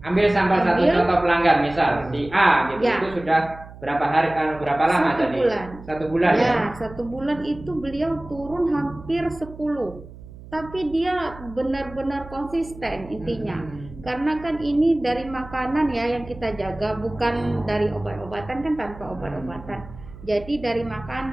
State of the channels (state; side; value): noise; right; hum, 17 dB below the sound